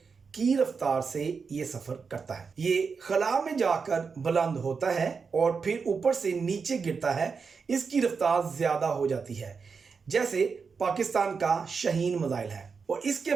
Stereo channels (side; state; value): left; quieter; 5.4 dB